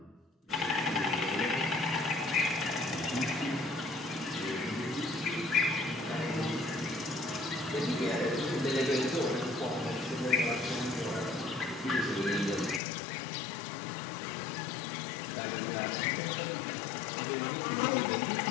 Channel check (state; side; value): drops out; right; at 12.8 s